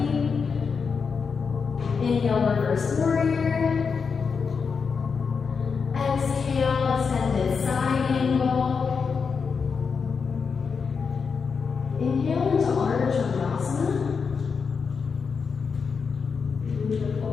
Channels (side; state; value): right; quieter; 5.6 dB